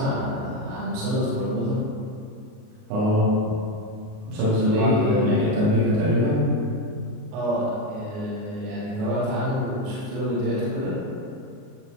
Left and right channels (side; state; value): left; late; 38 ms